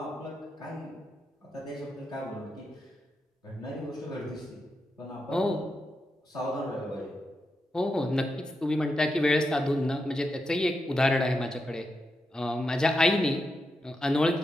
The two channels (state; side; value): normal; both; correlation 0.86